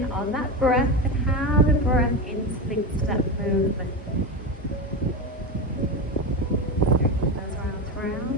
on that breath and how the breath interlinks to that movement.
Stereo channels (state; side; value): normal; both; correlation 0.18